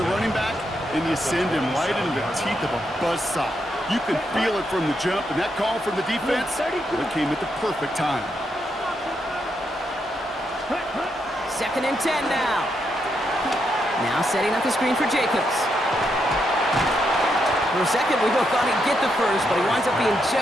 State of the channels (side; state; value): both; normal; correlation 0.80